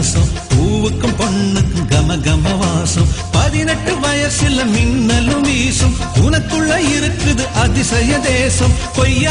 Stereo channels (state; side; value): identical; both; correlation 1.00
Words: பூவுக்கும் பொண்ணுக்கும் கம கம வாசம். 18 வயசுல மின்னலும் வீசும், உனக்குள்ள இருக்குது அதிசய தேசம்.